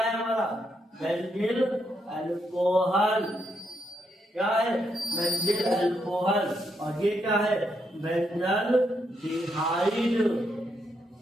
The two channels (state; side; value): normal; both; correlation 0.79